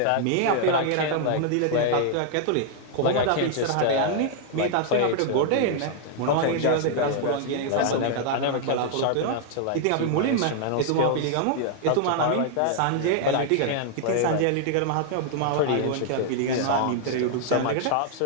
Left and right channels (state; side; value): different; both; correlation 0.00